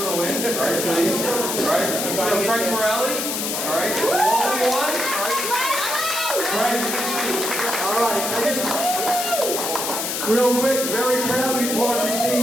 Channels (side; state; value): left; noise; hiss, 2 dB below the sound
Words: to win, right, please? All right, Frank Morelli, all right, who also won, all right? Brian, please speak. All right, I just, real quick, very proud to be part of this team,